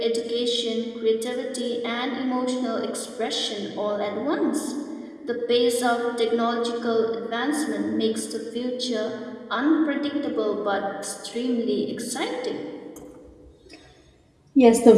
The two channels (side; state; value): both; identical; correlation 1.00